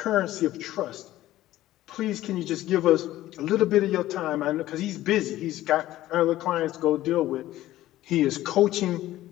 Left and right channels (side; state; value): right; quieter; 14.9 dB